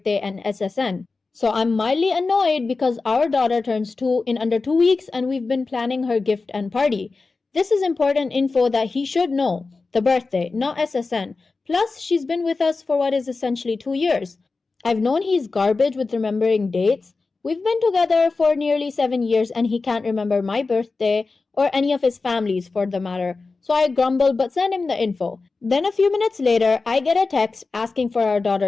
and SSN. So I'm mildly annoyed because our daughter turns 2 in under 2 weeks and we've been planning her gift and party. This is important info that he should know. The birthday, not SSN. Plus, she's been with us for what is essentially 2 years. I've known he's garbage with remembering dates. We've been together for nearly 7 years and he can't remember my birthday or any of his family's for the matter. So I grumble but send him the info. Then a few minutes later, I get a text asking for our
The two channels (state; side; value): quieter; right; 4.0 dB